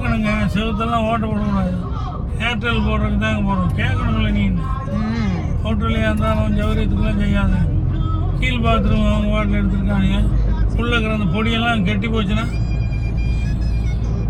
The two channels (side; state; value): both; identical; correlation 1.00